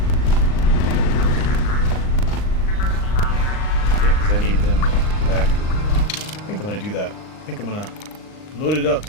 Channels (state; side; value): late; right; 39 ms